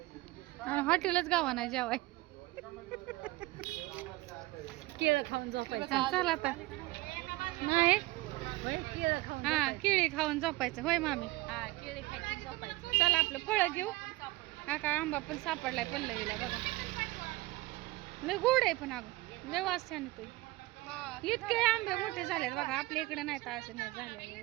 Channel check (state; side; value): quieter; left; 20.5 dB